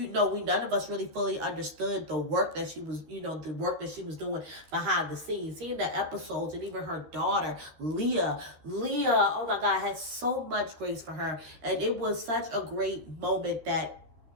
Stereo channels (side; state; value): left; late; 13 ms